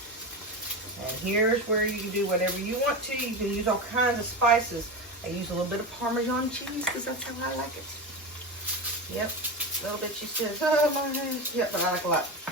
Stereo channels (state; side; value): normal; both; correlation 0.21